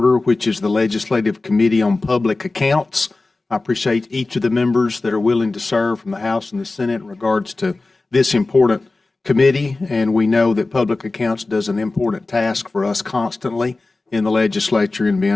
which is the Legislative Committee on Public Accounts. I appreciate each of the members that are willing to serve from the House and the Senate in regards to this important committee, and we know that public accounts does an important task for us constantly in the legislature in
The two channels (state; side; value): quieter; right; 3.3 dB